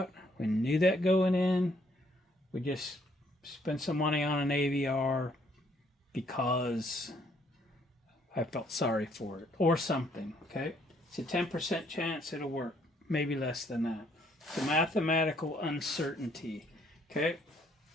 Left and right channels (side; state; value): both; normal; correlation 0.67